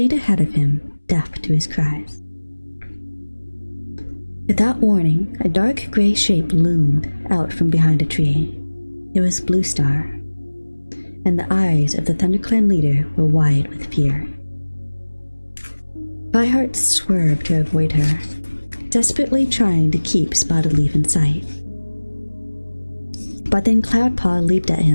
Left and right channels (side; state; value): both; inverted; correlation -1.00